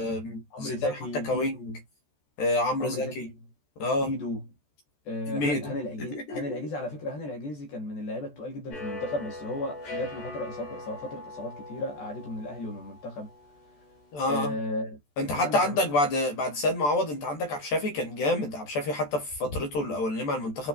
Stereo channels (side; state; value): right; late; 14 ms